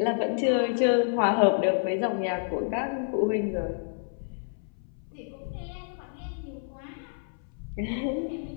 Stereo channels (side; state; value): right; silent; 59 dB below the other